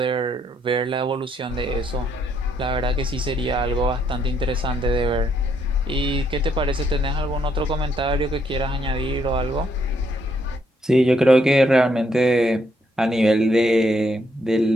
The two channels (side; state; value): both; normal; correlation 0.73